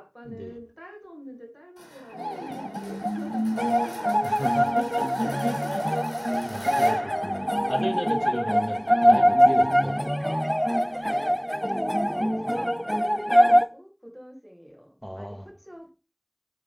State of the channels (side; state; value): both; identical; correlation 1.00